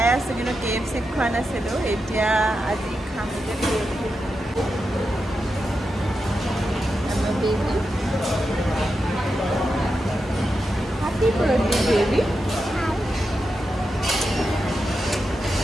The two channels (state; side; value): normal; both; correlation 0.88